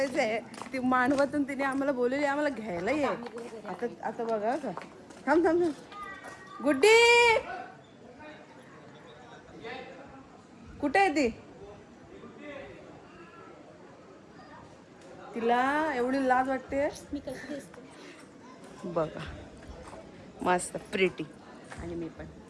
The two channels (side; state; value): both; identical; correlation 1.00